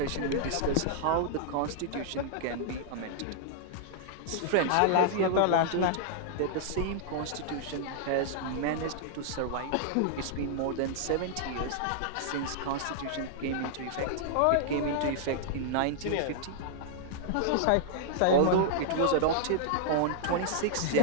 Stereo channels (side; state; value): both; different; correlation -0.01